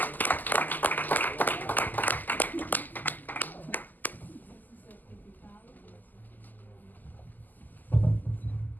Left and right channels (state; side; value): late; right; 0.085 ms